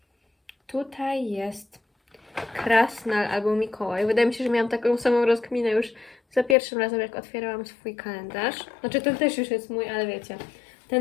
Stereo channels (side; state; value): right; drops out; at 6.6 s